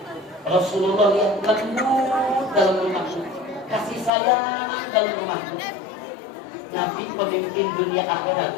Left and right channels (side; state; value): right; drops out; at 4.1 s